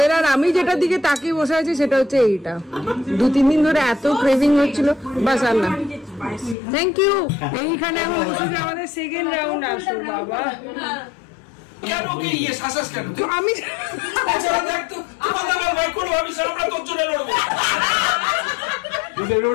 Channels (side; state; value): right; drops out; at 6.6 s